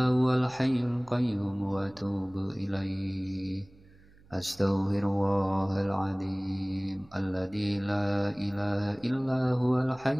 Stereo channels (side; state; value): right; noise; hum, 27 dB below the sound